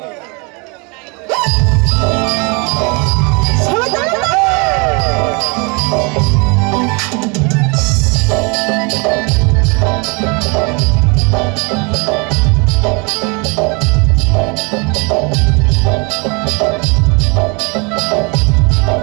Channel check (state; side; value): quieter; left; 31.0 dB